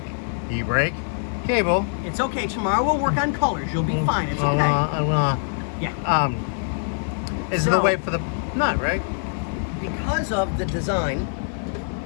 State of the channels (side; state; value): right; silent; digital silence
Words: cable. It's okay. Tomorrow we'll work on colors. You'll be fine. It's okay. Yeah. Is the way for the nut, right? Because of the design,